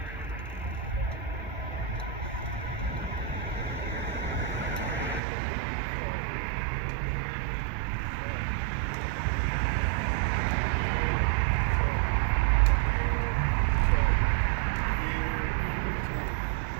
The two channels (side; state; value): left; drops out; at 5.2 s